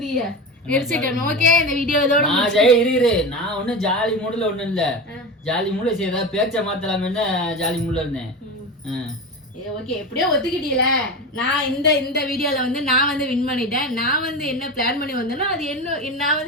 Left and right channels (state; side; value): normal; both; correlation 0.24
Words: எரிச்சல். ஓகே, இந்த வீடியோ இதோட நான் இரு நான் ஒன்னும் ஜாலி மூடுல ஒண்ணும் இல்ல. ஜாலி மூடுல சரி ஏதாவது பேச்ச மாத்தலாமேன்னு ஜாலி மூடுல இருந்தேன். ஓகே, எப்படியோ ஒத்துக்கிட்டீல. நான் இந்த வீடியோல வந்து நான் வந்து வின் பண்ணிட்டேன். நான் வந்து என்ன பிளான் பண்ணி வந்தேனோ அது என்ன நான்